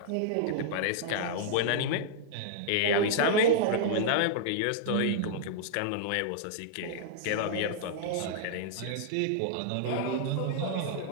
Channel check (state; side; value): different; both; correlation -0.02